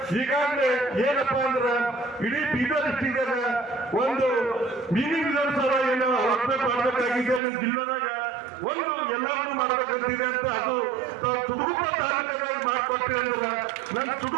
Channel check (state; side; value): drops out; left; at 7.4 s